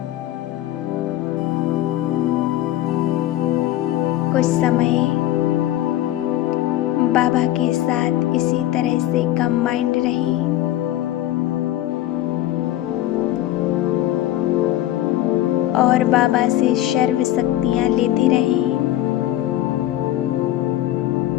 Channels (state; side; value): quieter; right; 14.1 dB